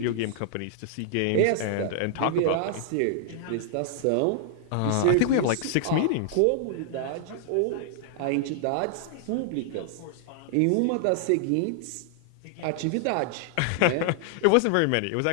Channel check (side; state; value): both; different; correlation -0.01